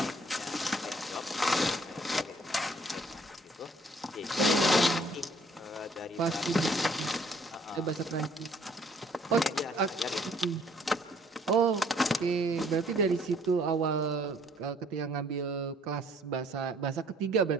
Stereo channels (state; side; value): normal; both; correlation 0.61